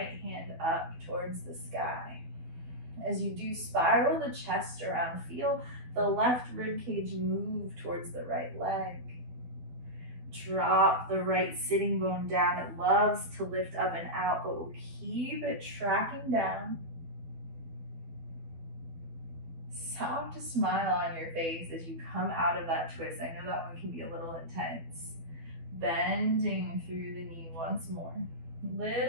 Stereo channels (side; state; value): left; late; 12 ms